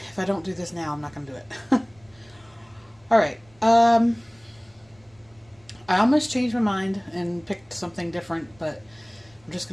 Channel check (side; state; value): right; noise; rumble, 30 dB below the sound